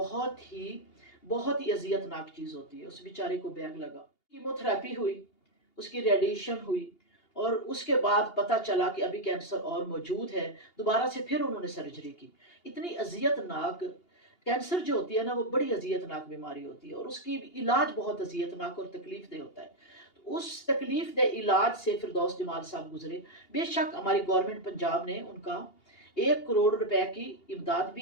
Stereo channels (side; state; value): right; late; 2.8 ms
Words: ہی اذیت ناک چیز ہوتی ہے۔ اس بیچارے کو بیگ لگا، کیمو تھراپی ہوئی، اس کی ریڈیشن ہوئی، اور اس کے بعد پتہ چلا کہ ابھی کینسر اور موجود ہے۔ دوبارہ سے پھر انہوں نے سرجری کی۔ اتنی اذیت ناک کینسر جو ہوتی ہے نا وہ بڑی اذیت ناک بیماری ہوتی ہے اور اس کی علاج بہت اذیت ناک اور تکلیف دہ ہوتا ہے۔ تو اس تکلیف دہ علاج سے فردوس جمال صاحب گزرے۔ بے شک ہماری گورنمنٹ پنجاب نے ان کا 1 کروڑ روپے کی امداد